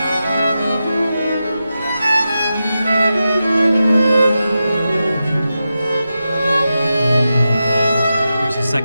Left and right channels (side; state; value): both; inverted; correlation -0.90